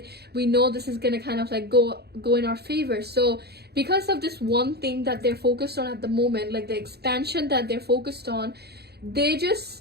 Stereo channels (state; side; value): late; left; 0.47 ms